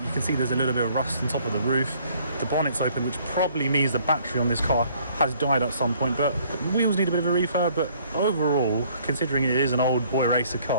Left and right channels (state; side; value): inverted; both; correlation -0.61